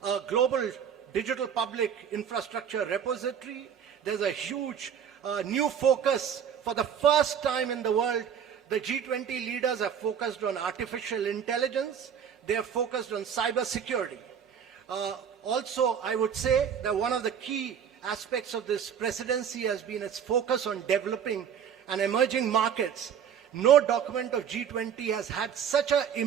a global digital public infrastructure repository. There's a huge new focus. For the first time in the world, the G20 leaders have focused on artificial intelligence. They have focused on cyber security. Also, I would say that one of the key aspects of this presidency has been its focus on developing and emerging markets. No document of G20 has had such an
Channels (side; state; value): left; quieter; 8.0 dB